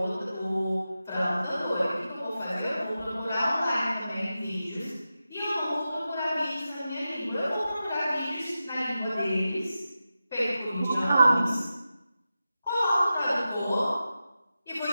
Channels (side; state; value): both; inverted; correlation -0.92